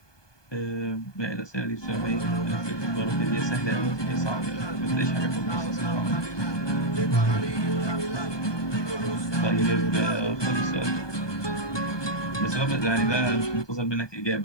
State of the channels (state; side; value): late; right; 1.2 ms